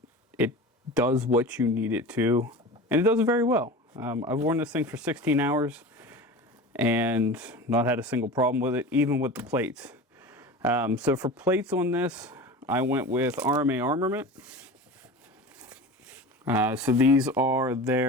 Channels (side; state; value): both; normal; correlation 0.33